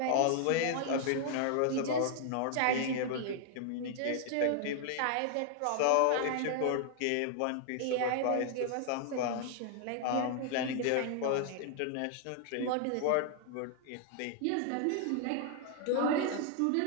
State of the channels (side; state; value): both; different; correlation 0.00